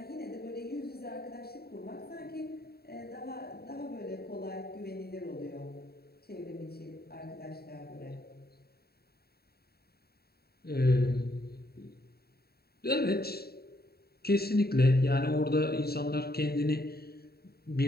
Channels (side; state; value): right; late; 0.45 ms